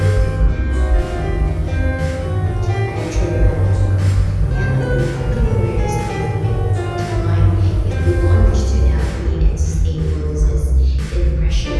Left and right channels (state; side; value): identical; both; correlation 1.00